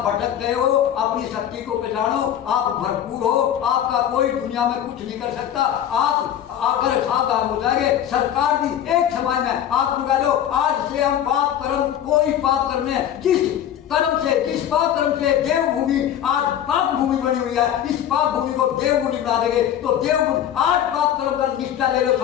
भटक गए हो, अपनी शक्ति को पहचानो, आप भरपूर हो, आपका कोई दुनिया में कुछ नहीं कर सकता। आप आकर सावधान हो जाएंगे। सरकार भी एक समय में आप लगा लो, आज से हम पाप कर्म कोई पाप करने जिस पाप कर्म से देवभूमि आज पाप भूमि बनी हुई है, इस पाप भूमि को देवभूमि बना देंगे। तो देवभूमि आज पाप कर्म का निष्ठा ले लो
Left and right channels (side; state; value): right; quieter; 10.5 dB